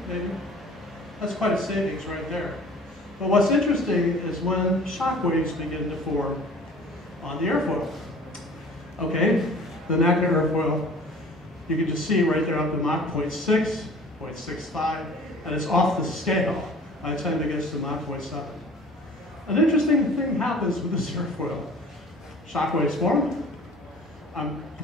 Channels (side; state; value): both; normal; correlation 0.47